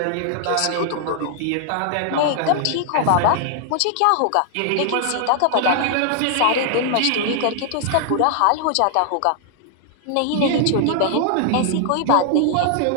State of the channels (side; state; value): both; different; correlation 0.00